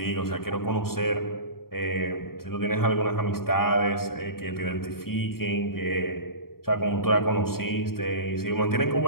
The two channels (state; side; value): late; right; 0.93 ms